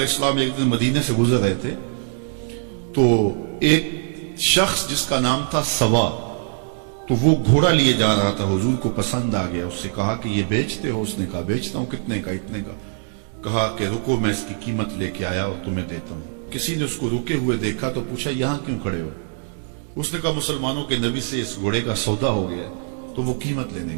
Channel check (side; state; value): left; silent; digital silence